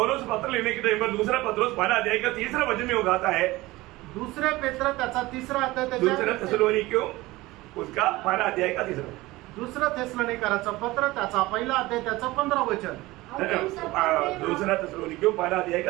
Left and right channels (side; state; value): left; quieter; 19.6 dB